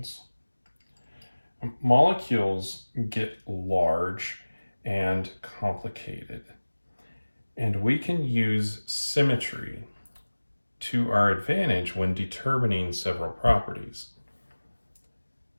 Molecules get large and complicated, and we can use symmetry to our advantage when determining several properties.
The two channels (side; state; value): both; inverted; correlation -1.00